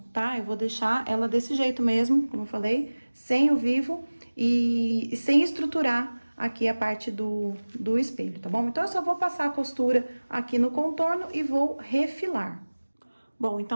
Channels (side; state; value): both; inverted; correlation -1.00